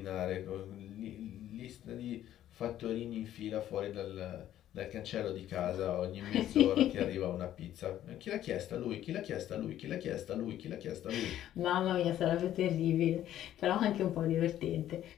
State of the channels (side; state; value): right; quieter; 12.1 dB